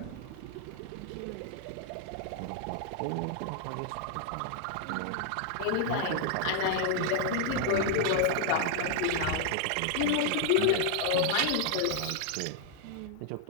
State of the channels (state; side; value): different; both; correlation 0.00